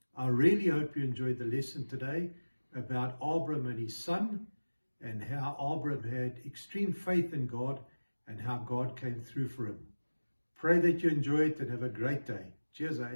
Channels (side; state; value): both; inverted; correlation -1.00